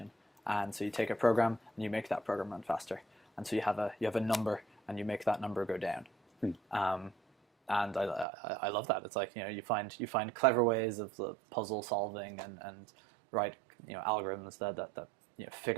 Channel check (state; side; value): drops out; left; at 8.2 s